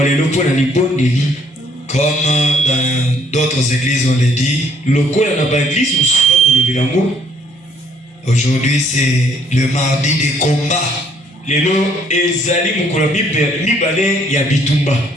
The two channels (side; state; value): both; normal; correlation 0.64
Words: Comme dans d'autres églises on l'a dit. Aujourd'hui c'est le mardi des combats.